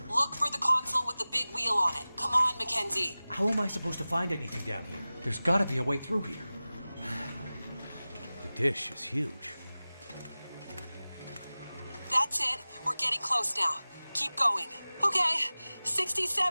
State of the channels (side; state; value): both; inverted; correlation -0.97